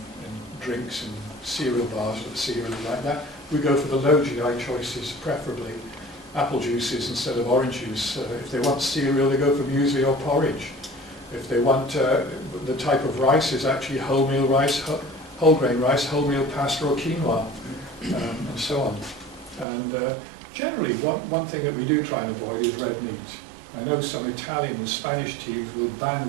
drinks and cereal bars with cereal like that. We go for the low GI choices, preferably apple juices instead of orange juice. If they want cereal, they go for muesli or porridge. If they want the type of rice is actually wholemeal rice, whole grain rice, wholemeal pasta or quinoa, and so on. And generally, one thing that we do try and avoid is red meat. I know some Italian and Spanish teams will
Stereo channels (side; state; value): left; drops out; at 19.7 s